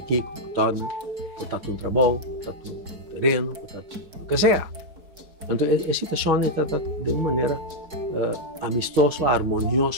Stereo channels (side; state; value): left; late; 4.6 ms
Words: Kiko, todo, botar um trabalho, botar um terreno, botar o que seja. Então, a situação está de uma maneira amistosa,